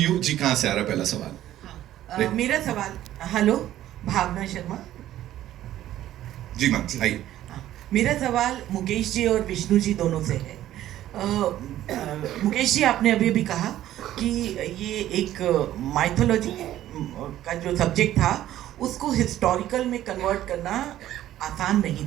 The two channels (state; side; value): quieter; left; 13.1 dB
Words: जी कहां से आ रहा पहला सवाल? मेरा सवाल, हेलो भावना शर्मा जी मैम आइए. मेरा सवाल मुकेश जी और विष्णु जी दोनों से है. मुकेश जी आपने अभी भी कहा कि ये एक माइथोलॉजी का जो सब्जेक्ट था उसको हिस्टोरिकल में कन्वर्ट करना आसान नहीं